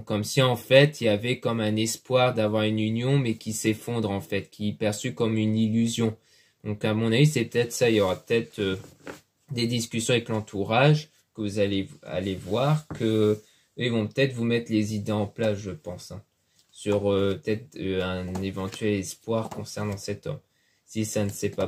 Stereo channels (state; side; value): identical; both; correlation 1.00